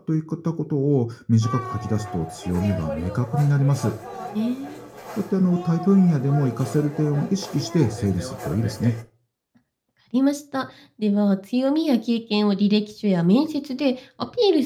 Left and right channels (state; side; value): identical; both; correlation 1.00